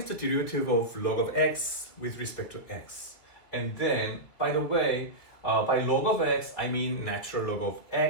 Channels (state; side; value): late; right; 2.4 ms